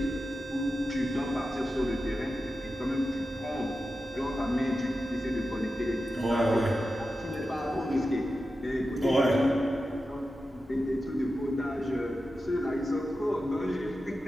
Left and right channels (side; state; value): both; normal; correlation 0.92